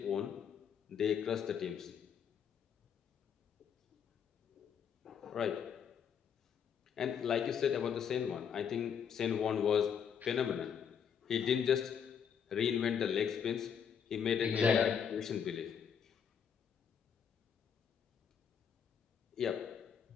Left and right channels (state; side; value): quieter; right; 7.6 dB